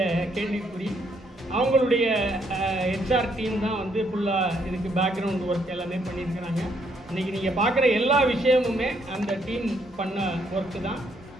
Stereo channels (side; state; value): both; normal; correlation 0.72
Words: கேள்விக்குறி. அவங்களுடைய ஹெச்ஆர் டீம் தான் வந்து ஃபுல்லாக இதுக்கு பேக்ரவுண்ட் ஒர்க் எல்லாமே பண்ணியிருக்கிறாங்க. இன்றைக்கி நீங்கள் பார்க்குற எல்லா விஷயமுமே அந்த டீம் பண்ண ஒர்க்கு தான்.